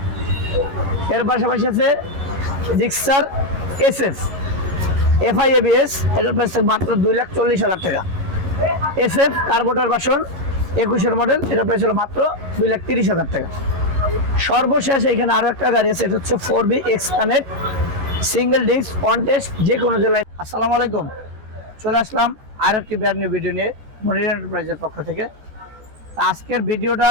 এর পাশাপাশি আছে জিক্সার SF FI ABS, এটার প্রাইস মাত্র 2,40,000 টাকা। SF কার্বোটার ভার্সন 21 মডেল, এটার প্রাইস হলো মাত্র 2,30,000 টাকা। সর্বশেষ এখানে আরো একটা গাড়ি আছে, এটা হচ্ছে 4B X connect single disc on test, যে কোনো জেলায়। আসসালামু আলাইকুম, চলে আসলাম আর একটি ব্র্যান্ড নিউ ভিডিও নিয়ে মনির এন্টারপ্রাইজের পক্ষ থেকে। আজকের ভিডিওটা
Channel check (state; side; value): late; left; 13 ms